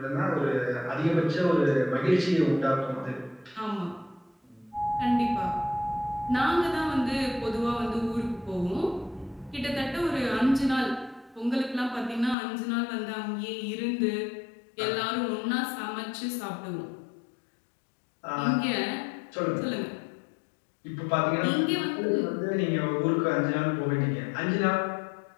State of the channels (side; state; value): right; drops out; at 12.4 s